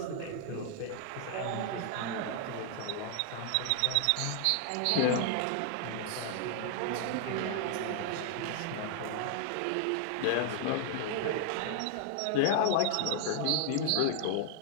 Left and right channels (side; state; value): both; different; correlation 0.00